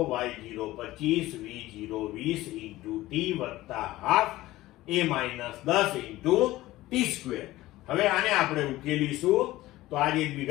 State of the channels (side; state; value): right; quieter; 17.0 dB